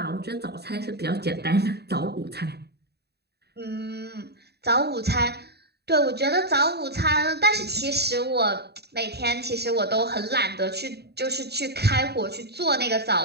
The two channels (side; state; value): left; late; 0.48 ms